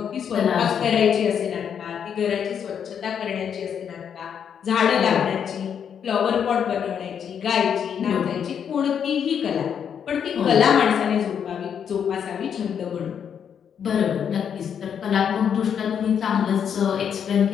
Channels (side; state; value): right; quieter; 7.9 dB